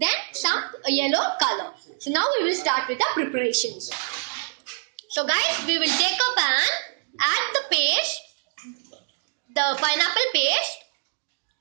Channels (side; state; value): left; silent; digital silence